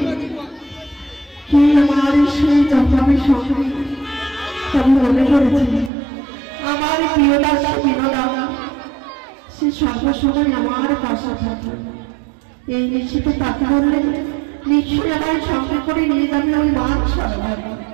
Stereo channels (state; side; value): drops out; left; at 5.9 s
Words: কি আমার সেই জন্মাবে সঙ্গে তবে মনে করেছি আমার প্রিয় দাস বিনোদা, সে সর্বসময় আমার পাশে থাকে। এই নিশ্চিত তাকে বললে নিশ্চয়ই আমার সঙ্গে করে নিয়ে যাবে ওই মান সরোবরে।